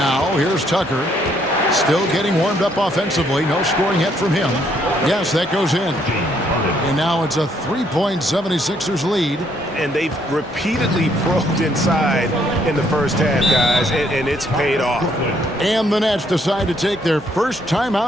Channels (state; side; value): normal; both; correlation 0.69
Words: here's Tucker. Still getting warmed up offensively. No scoring yet from him. Yes, that goes in. And now it's a 3-point 76ers lead. And they've repeatedly probed inside in the first half, guys, and it's paid off. And the Nets decide to take their first time